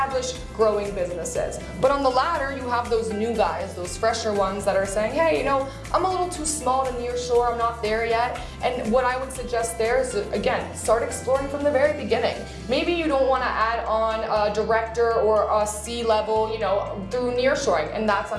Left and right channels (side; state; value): both; identical; correlation 1.00